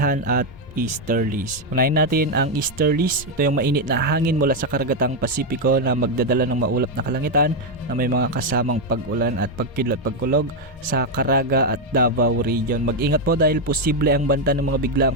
at easterlies. Unahin natin ang easterlies. Ito yung mainit na hangin mula sa karagatang Pasipiko na magdadala ng maulap na kalangitan na may mga kasamang pag-ulan at pagkidlat pagkulog sa Caraga at Davao region. Mag-ingat po dahil posible ang banta ng mga biglaang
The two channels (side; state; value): both; normal; correlation 0.04